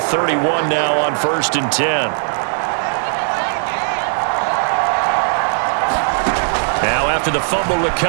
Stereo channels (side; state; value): left; silent; digital silence